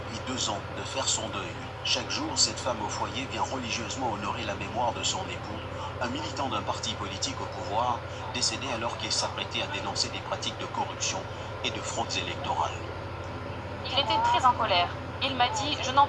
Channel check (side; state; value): both; identical; correlation 1.00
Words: 2 ans de faire son deuil. Chaque jour, cette femme au foyer vient religieusement honorer la mémoire de son époux, un militant d'un parti politique au pouvoir, décédé alors qu'il s'apprêtait à dénoncer des pratiques de corruption et de fraudes électorales. Il était très en colère. Il m'a dit: je n'en